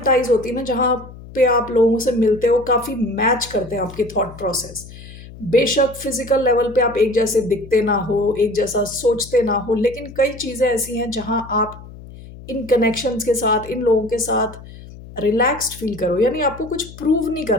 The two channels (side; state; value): left; noise; hum, 17 dB below the sound